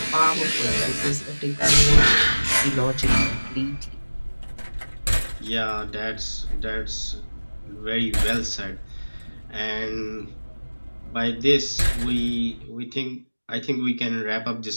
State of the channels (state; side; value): inverted; both; correlation -1.00